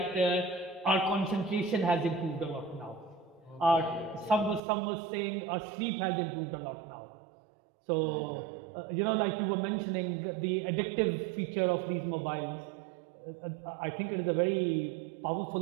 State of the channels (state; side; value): drops out; left; at 4.6 s